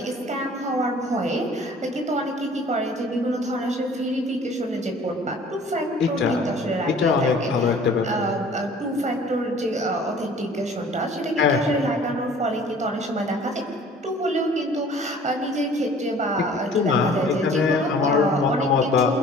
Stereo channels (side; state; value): both; normal; correlation 0.50